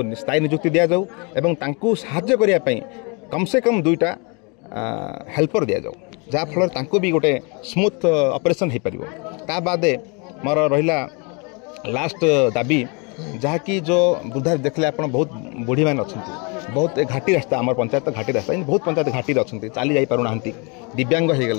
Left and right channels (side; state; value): right; quieter; 32.0 dB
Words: स्थायी नियुक्ति दि जाऊ एवं साहाय्य करने कम से कम 2टा हेल्पर दि जाऊ जहाँफल भी गोटे स्मूथ ऑपरेशन हो पार। ता बाद मोर रहा लास्ट दाबी जहाँकि जो वृद्धा देखले आप बहुत बुढ़ी मैंने अच्छा बहुत घाटी रास्ता आम पंचायत घाटी रास्ता बहुत पंचायत घाटी अच्छा चली जा पारना दिव्यांग हो